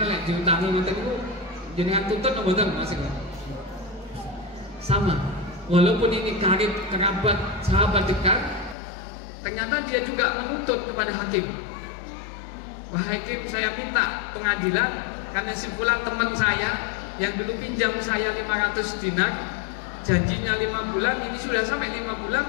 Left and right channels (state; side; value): drops out; right; at 8.8 s